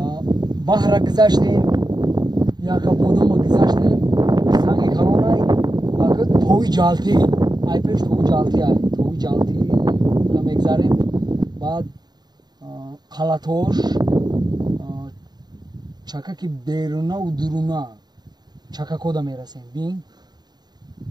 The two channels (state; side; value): late; left; 0.20 ms